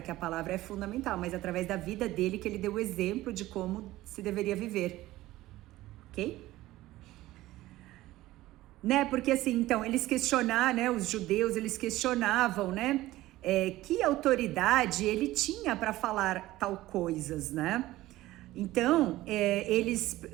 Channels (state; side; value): quieter; left; 16.6 dB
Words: que a palavra é fundamental, mas através da vida dele, que ele deu o exemplo de como se deveria viver, ok? Né, porque assim, então, eles questionaram, né, os judeus, eles questionavam, né, que autoridade ele tinha para falar tal coisas, né? Então,